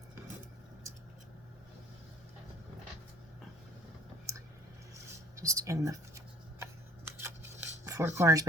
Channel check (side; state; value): both; normal; correlation 0.51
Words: Just in the four corners,